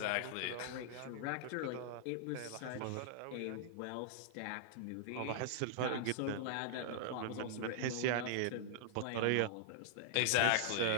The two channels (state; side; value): different; both; correlation -0.01